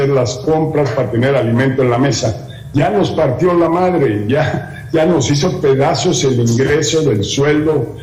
las compras, para tener alimento en la mesa. Ya nos partió la madre, ya nos hizo pedazos el ingreso del sueldo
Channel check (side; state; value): both; identical; correlation 1.00